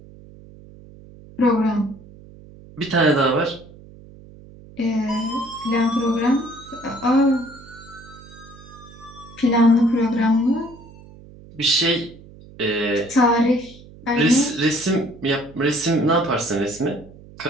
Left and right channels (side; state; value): right; noise; hum, 21 dB below the sound